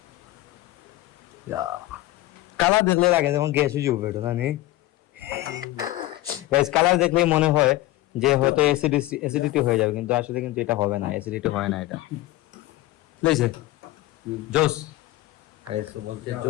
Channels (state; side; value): quieter; right; 16.7 dB